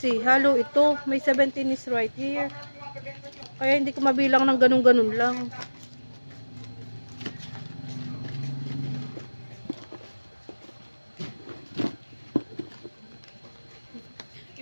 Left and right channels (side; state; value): both; inverted; correlation -1.00